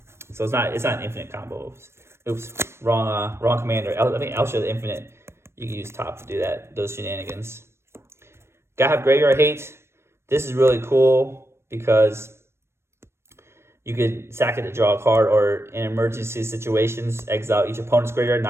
So it's not an infinite combo. Oops, wrong commander. I think Elsha the Infinite. You can use top to do those shenanigans. Gotta have Graveyard Hate. This is really cool because you could sack it to draw a card, or in emergency situations, exile each opponent's graveyard,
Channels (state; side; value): late; left; 0.12 ms